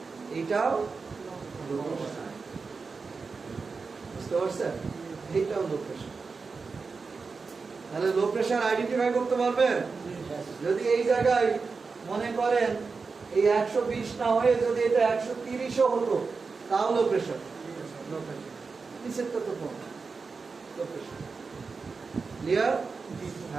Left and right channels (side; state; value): left; quieter; 4.6 dB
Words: এটাও লো প্রেসার। বুঝতে পারছেন? এটাও লো প্রেসার। তাহলে লো প্রেসার আইডেন্টিফাই করতে পারবেন? যদি এই জায়গায় মনে করেন এই 120 না হয়ে যদি এটা 130ও হতো, তাও লো প্রেসার। নিচেরটা তো কম, লো প্রেসার। ক্লিয়ার?